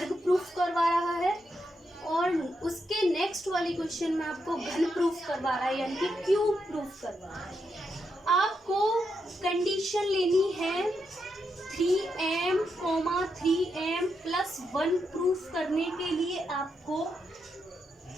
प्रूफ करवा रहा है, और उसके नेक्स्ट वाले क्वेश्चन में आपको घन प्रूफ करवा रहा है, यानी कि क्यूब प्रूफ करवा रहा है। आपको कंडीशन लेनी है 3m, 3m + 1 प्रूफ करने के लिए आपको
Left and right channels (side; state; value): both; normal; correlation 0.82